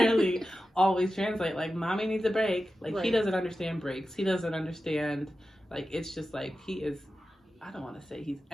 always translate. Like, mommy needs a break. Like, he Right. doesn't understand breaks. He doesn't understand, like, it's just like, he is, I don't want to say he's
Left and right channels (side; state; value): both; normal; correlation 0.92